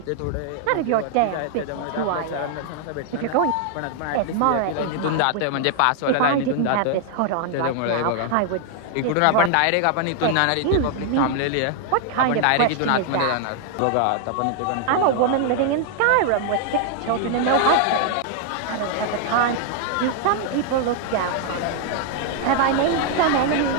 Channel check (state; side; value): different; both; correlation 0.00